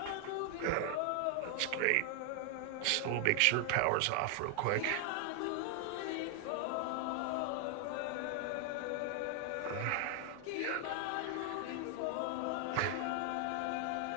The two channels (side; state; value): both; different; correlation 0.00